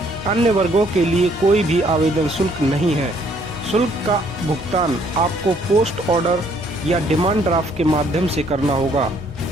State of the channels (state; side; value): normal; both; correlation 0.65